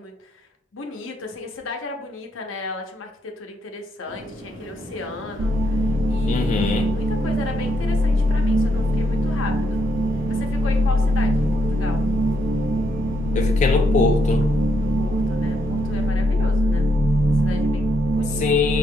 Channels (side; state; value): both; normal; correlation 0.77